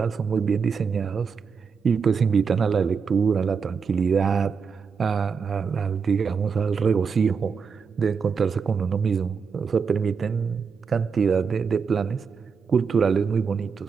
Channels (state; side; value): quieter; left; 5.9 dB